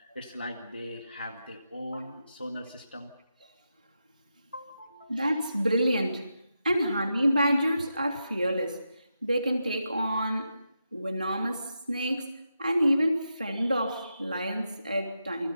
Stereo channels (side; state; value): both; inverted; correlation -0.86